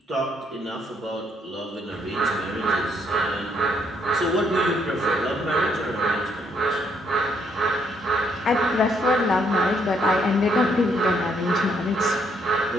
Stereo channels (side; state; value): both; normal; correlation 0.71